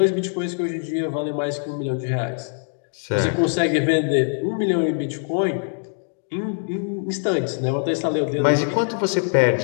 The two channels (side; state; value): right; silent; digital silence